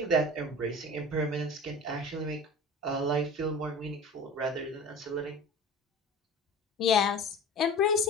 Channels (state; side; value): normal; both; correlation 0.37